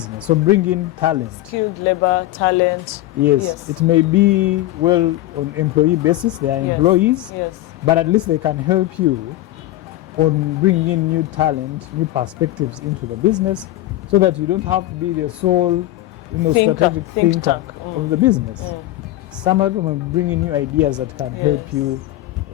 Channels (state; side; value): quieter; right; 15.6 dB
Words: So bring in talent. Skilled labor, talent. Yes, it may be on employee basis, they are employees, Yes. but at least they can help you on bringing in new talent, new perspectives into the business, so that you don't have to be the sole, strategic thinker of the business. Some of them will bring in new ideas that can help you,